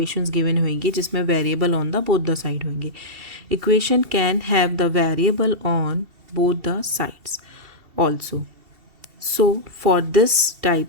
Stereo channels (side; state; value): left; late; 2.7 ms